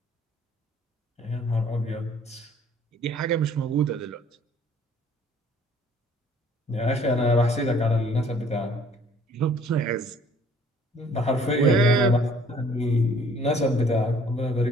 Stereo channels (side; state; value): both; normal; correlation 0.57